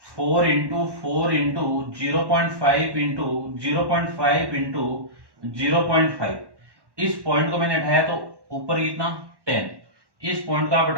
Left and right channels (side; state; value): left; late; 1.1 ms